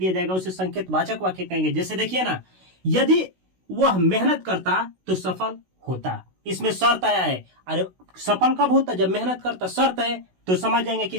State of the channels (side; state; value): left; late; 16 ms